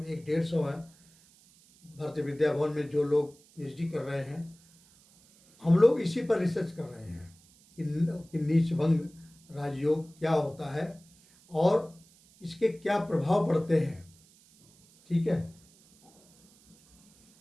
150 है भारतीय विद्या भवन में जो लोग पीएचडी कर रहे हैं, हम लोग इसी पर रिसर्च कर रहे हैं कि नीच भंग राजयोग क्या होता है और इसके क्या प्रभाव पड़ते हैं। ठीक है।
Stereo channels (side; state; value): right; noise; hiss, 28 dB below the sound